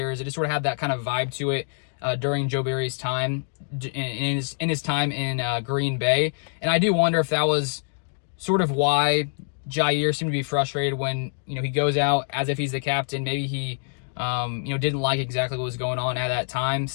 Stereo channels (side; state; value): right; silent; digital silence